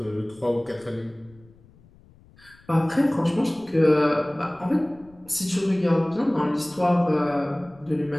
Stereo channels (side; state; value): left; noise; rumble, 27 dB below the sound